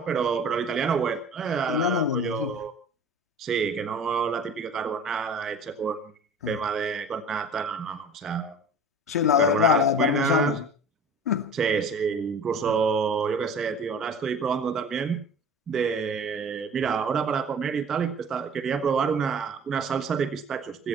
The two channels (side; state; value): both; normal; correlation 0.42